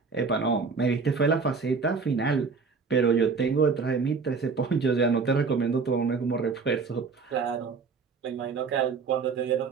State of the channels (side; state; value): left; quieter; 5.0 dB